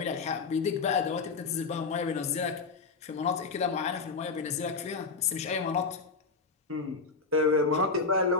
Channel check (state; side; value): quieter; right; 4.5 dB